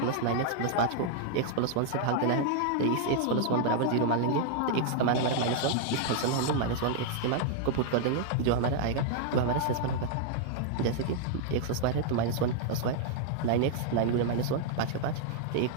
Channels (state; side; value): different; both; correlation 0.00